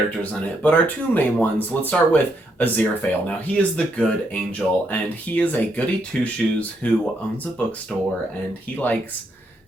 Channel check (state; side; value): normal; both; correlation 0.76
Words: in it, but our 2 main ones, let's start with Aziraphale. Now, he is the good angel, and he is a goody two-shoes who owns a bookstore, and he likes